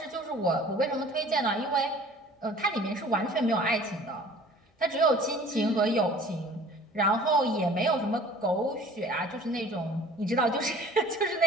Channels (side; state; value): both; normal; correlation 0.48